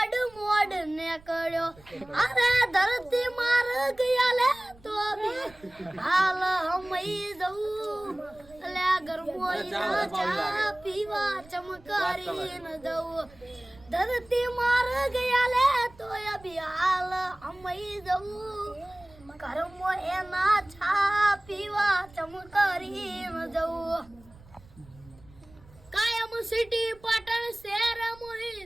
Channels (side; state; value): right; noise; rumble, 24 dB below the sound